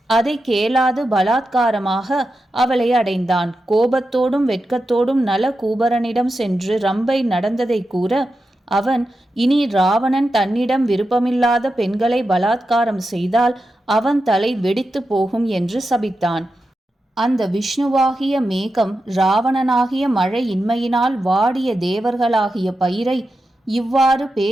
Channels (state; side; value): normal; both; correlation 0.89